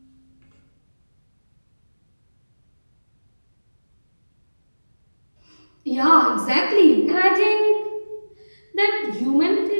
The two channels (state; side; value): inverted; both; correlation -1.00